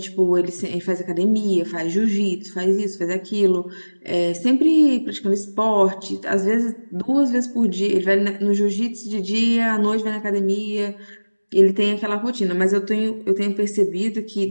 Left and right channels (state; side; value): inverted; both; correlation -1.00